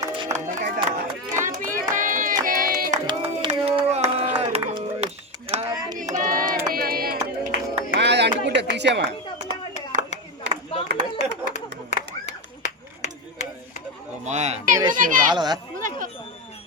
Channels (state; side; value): normal; both; correlation 0.13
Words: అంటుకుంటా తీసేమా. రాలదా